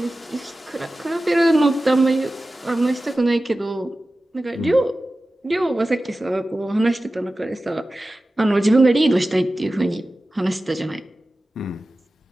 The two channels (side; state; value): both; normal; correlation 0.95